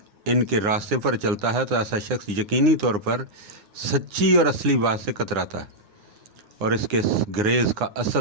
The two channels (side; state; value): left; late; 9.7 ms